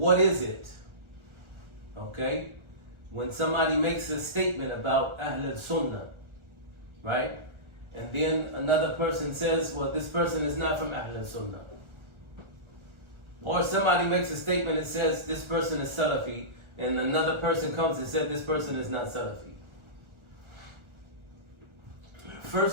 is it? Okay? When somebody makes a statement about Ahl al-Sunnah, right? And then another person says, well, this person is not from Ahl al-Sunnah. Or somebody makes a statement that says this person is Salafi, and another person comes and says this person is not Salafi.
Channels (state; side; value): late; left; 1.3 ms